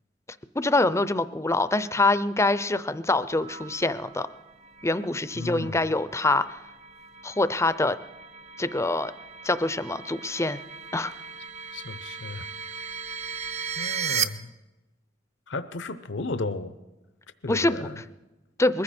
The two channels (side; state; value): both; normal; correlation 0.53